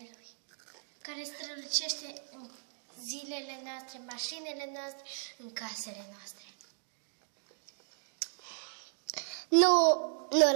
care strălucește în zilele noastre, mașinile noastre, în casele noastre. Nu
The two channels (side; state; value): left; silent; digital silence